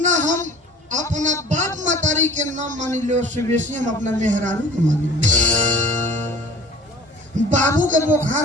हम अपना बाप मतारी के नाम मानी ले उससे बेसी हम अपना मेहरारू के मानी ले। बाबू के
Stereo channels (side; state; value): both; normal; correlation 0.45